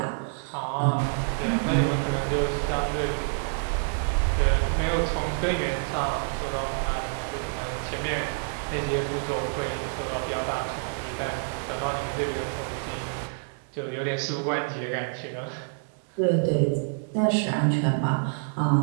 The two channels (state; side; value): silent; left; 58 dB below the other